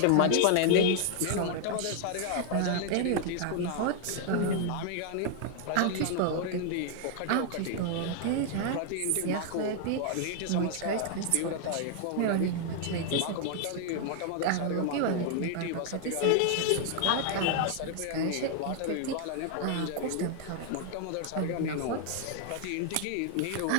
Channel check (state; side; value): different; both; correlation 0.00